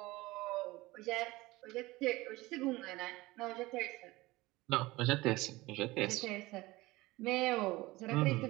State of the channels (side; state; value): left; quieter; 20.2 dB